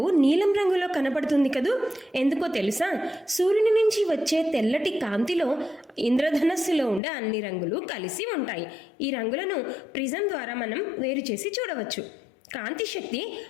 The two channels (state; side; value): drops out; right; at 7.0 s